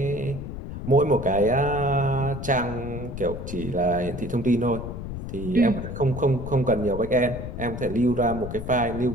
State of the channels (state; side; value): noise; left; rumble, 8 dB below the sound